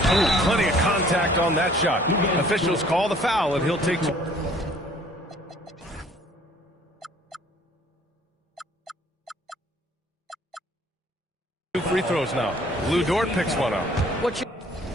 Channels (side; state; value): both; normal; correlation 0.56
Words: Oh, plenty of contact on that shot. Officials call the foul, and he'll take two. Two free throws now. Lou Dort picks one up. What you